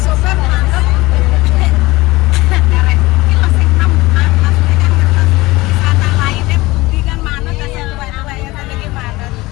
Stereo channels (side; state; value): right; quieter; 20.5 dB